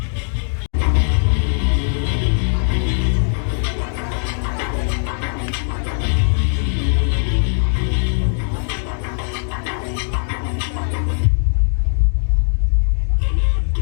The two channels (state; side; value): silent; right; digital silence